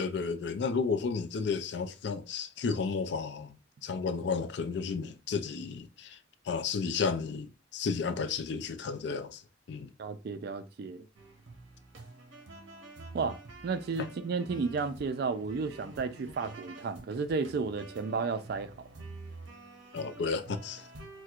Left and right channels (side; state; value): both; normal; correlation 0.19